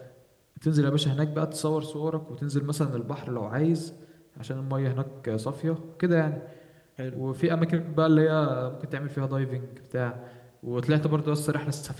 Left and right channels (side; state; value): both; identical; correlation 1.00